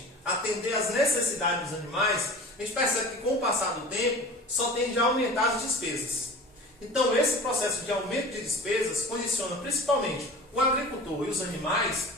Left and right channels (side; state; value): both; normal; correlation 0.39